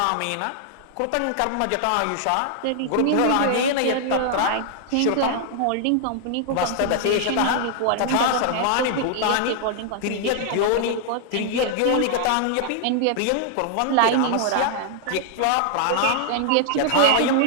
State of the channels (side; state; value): both; different; correlation 0.00